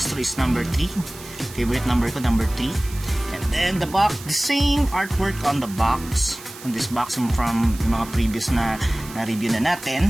is number 3. Favorite number ko, number 3. And then the box, the same artwork on the box. On this box from mga previous na review na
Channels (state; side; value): noise; right; hiss, 16 dB below the sound